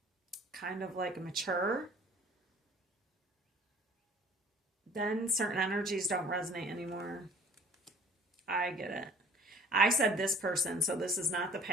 kind of like mature, then certain energies don't resonate anymore. I get it. I said this person, so this is not the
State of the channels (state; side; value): normal; both; correlation 0.50